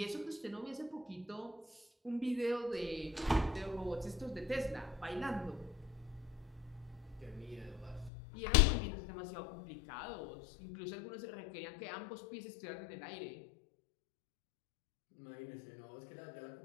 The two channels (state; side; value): drops out; right; at 8.1 s